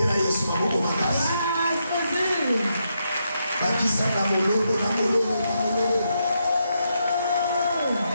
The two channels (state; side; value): inverted; both; correlation -0.81